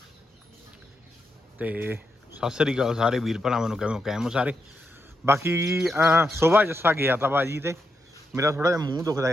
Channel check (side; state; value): both; normal; correlation 0.83